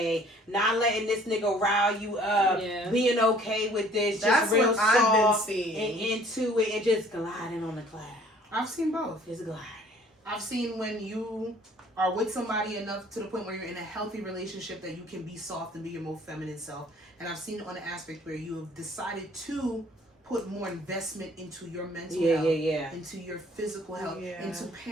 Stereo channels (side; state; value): both; normal; correlation 0.55